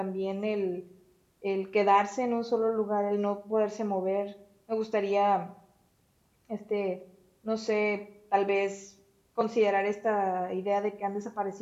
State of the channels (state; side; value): identical; both; correlation 1.00